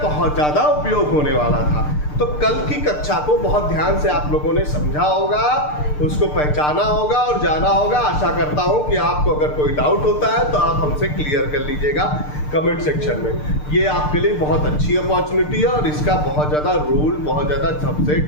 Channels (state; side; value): late; right; 6.7 ms